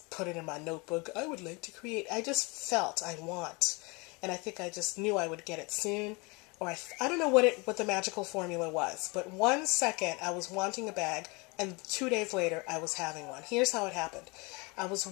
put it in my notebook. I would like to create. I just felt I want. And I think I just knew I would get it soon. Or I don't know what the magical formula was. But 1 second I was wanting a bag, and 2 days later I was having one. Here's how it happened. I was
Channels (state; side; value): quieter; right; 28.1 dB